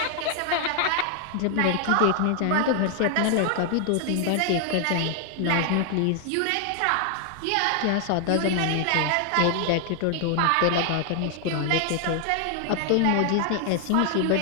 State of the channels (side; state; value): both; different; correlation 0.00